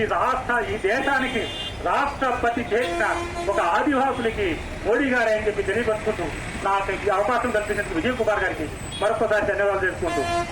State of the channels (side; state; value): both; identical; correlation 1.00